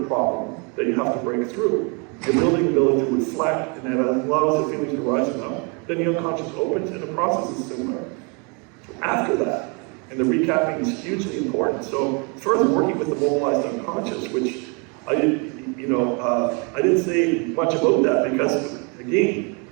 that you have to break through. You're building the ability to reflect, and that allows the feelings to rise up. Then the unconscious opens, and the process is similar. After that, and the recapping is hugely important. So further working with the mobilized unconscious, which I didn't say much about that, because again,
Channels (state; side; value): quieter; left; 33.8 dB